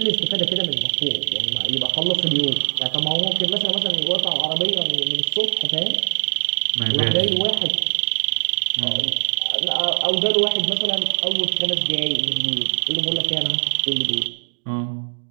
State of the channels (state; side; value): silent; left; digital silence